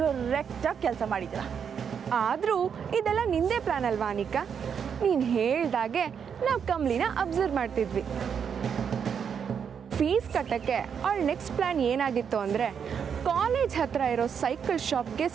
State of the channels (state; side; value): quieter; left; 7.2 dB